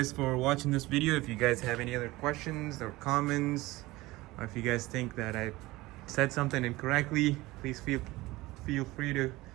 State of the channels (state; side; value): quieter; left; 19.7 dB